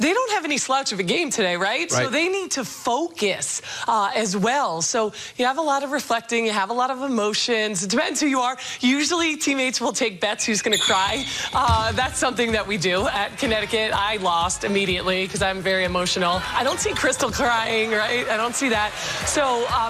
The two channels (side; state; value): both; identical; correlation 1.00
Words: don't have any slouch of a game today, right? So they need to focus as well. So you have a lot of reflecting. You have a lot of emotions. It depends who you are. Usually teammates will take bets who's going to cry. That's something that we do at Connecticut. I lost immediately because I'm very emotional. I don't see Crystal crying, right? I don't see that. So